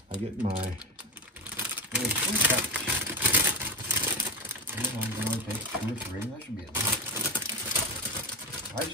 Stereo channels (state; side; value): normal; both; correlation 0.20